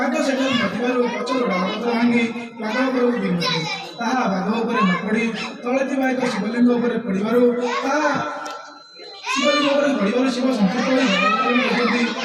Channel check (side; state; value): both; identical; correlation 1.00